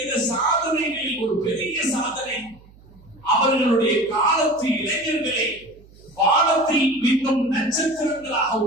சாதனைகளில் ஒரு பெரிய சாதனை அவர்களுடைய காலத்து இளைஞர்களை வானத்தில் மின்னும் நட்சத்திரங்களாக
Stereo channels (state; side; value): noise; right; hum, 25 dB below the sound